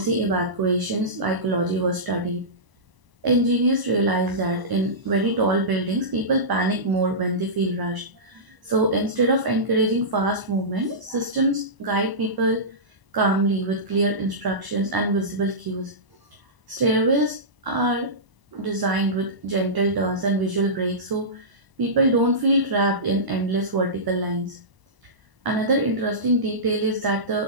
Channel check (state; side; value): late; left; 1.0 ms